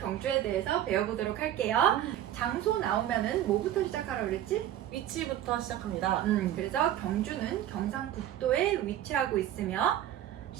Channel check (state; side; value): quieter; left; 11.9 dB